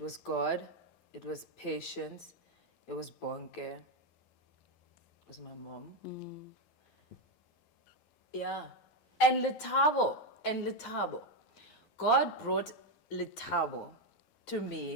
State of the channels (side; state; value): right; late; 12 ms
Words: was God. It was patience. It was Bonke. It was my mom. Yeah. And Letabo. God brought Letabo to